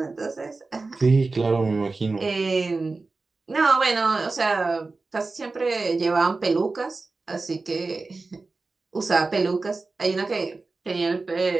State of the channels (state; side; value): quieter; left; 3.7 dB